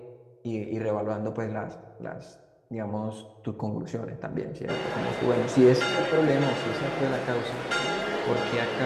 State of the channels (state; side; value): identical; both; correlation 1.00